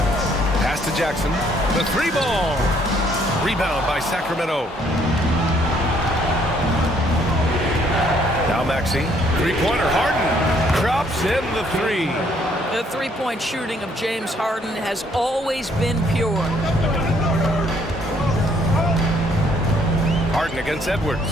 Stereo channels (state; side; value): normal; both; correlation 0.66